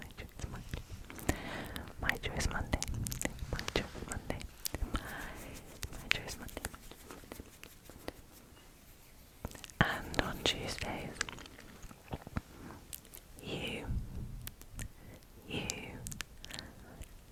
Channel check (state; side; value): identical; both; correlation 1.00